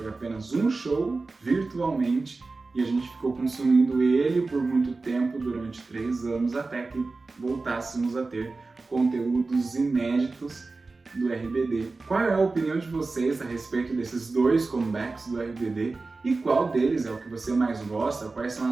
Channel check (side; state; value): left; quieter; 3.7 dB